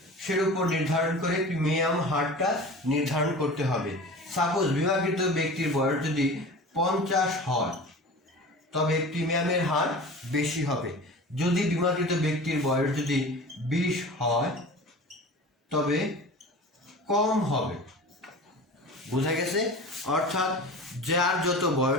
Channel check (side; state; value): both; normal; correlation 0.36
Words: উপর নির্ধারণ করে প্রিমিয়াম হারটা নির্ধারণ করতে হবে। সাপোজ বীমাকৃত ব্যক্তির বয়স যদি 50 হয় তবে প্রিমিয়ামের হার বেশি হবে। যদি বীমাকৃত ব্যক্তির বয়স যদি 20 হয় তবে কম হবে। বোঝা গেছে? অর্থাৎ যার যত